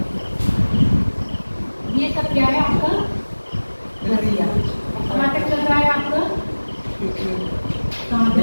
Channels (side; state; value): both; inverted; correlation -1.00